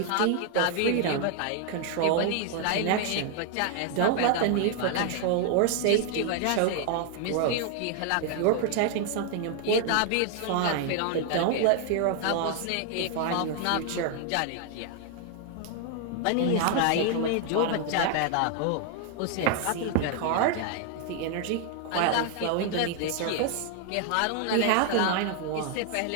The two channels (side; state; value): both; different; correlation 0.00